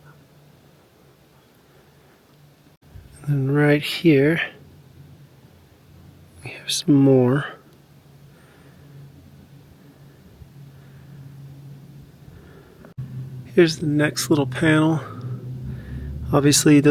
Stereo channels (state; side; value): identical; both; correlation 1.00